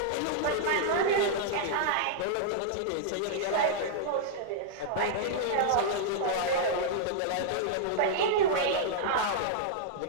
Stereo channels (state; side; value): different; both; correlation -0.01